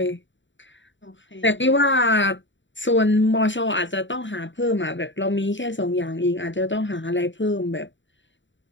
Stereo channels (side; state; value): right; late; 0.54 ms